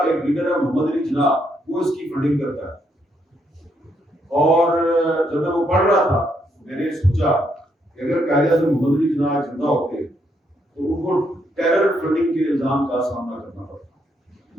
لیڈر ہے محمد علی جناح، وہ اس کی فنڈنگ کرتا ہے۔ اور جب میں وہ پڑھ رہا تھا میں نے سوچا کہ اگر قائد اعظم محمد علی جناح زندہ ہوتے تو ان کو ٹیرر فنڈنگ کے الزام کا سامنا کرنا پڑتا،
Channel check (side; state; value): both; normal; correlation 0.75